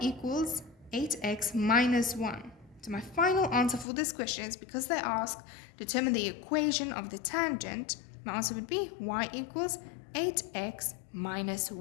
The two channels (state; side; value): drops out; right; at 3.9 s